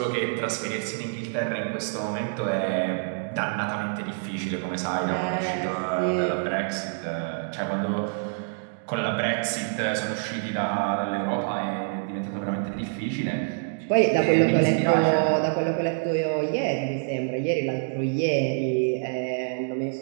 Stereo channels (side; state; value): left; silent; digital silence